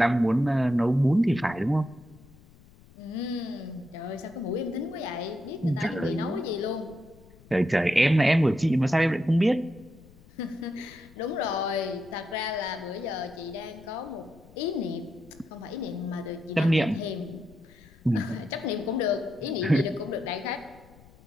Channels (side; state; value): left; noise; rumble, 25 dB below the sound